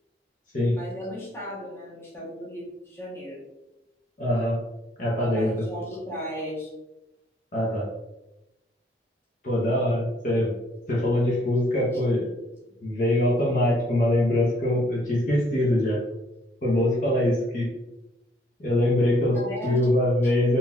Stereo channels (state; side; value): normal; both; correlation 0.65